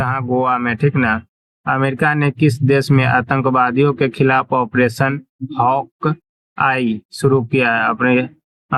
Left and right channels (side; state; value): both; identical; correlation 1.00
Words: गोवा में, ठीक ना। अमेरिका ने किस देश में आतंकवादियों के खिलाफ ऑपरेशन हॉक आई शुरू किया है? अपने